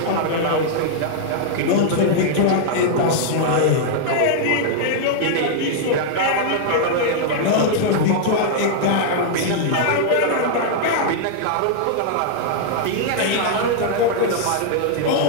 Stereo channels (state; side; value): different; both; correlation -0.01